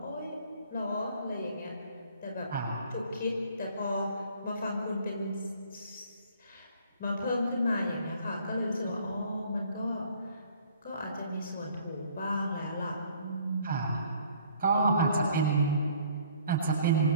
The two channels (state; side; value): inverted; both; correlation -0.56